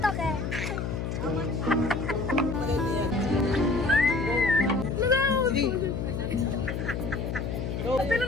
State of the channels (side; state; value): left; noise; hum, 3 dB below the sound